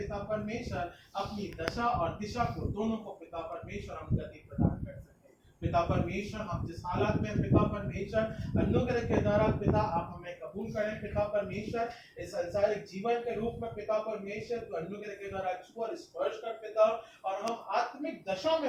परमेश्वर अपनी दशा और दिशा को दोनों को पिता परमेश्वर हम गति प्रदान कर सकें। पिता परमेश्वर हम जिस हालत में पिता परमेश्वर अनुग्रह के द्वारा पिता आप हमें कबूल करें पिता परमेश्वर, इस संसारिक जीवन के रूप में पिता परमेश्वर तो अनुग्रह के द्वारा छू और स्पर्श कर पिता, और हम आत्मिक दशा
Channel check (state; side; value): identical; both; correlation 1.00